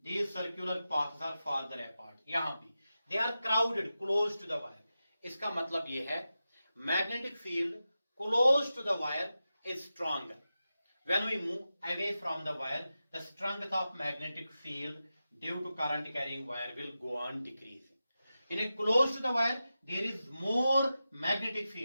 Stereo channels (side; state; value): both; inverted; correlation -0.92